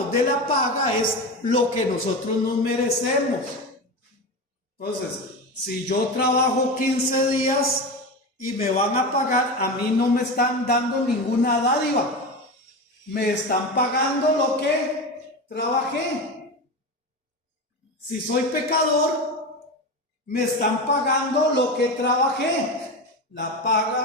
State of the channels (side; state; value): both; normal; correlation 0.23